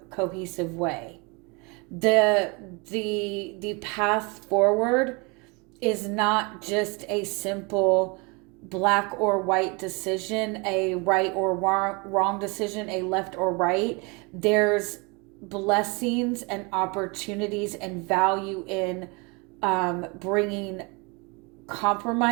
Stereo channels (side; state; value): left; quieter; 29.5 dB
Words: cohesive way. The path forward is not just a simple black or white decision, a right or wrong decision, a left or right. There's blessings and opportunities and value in bringing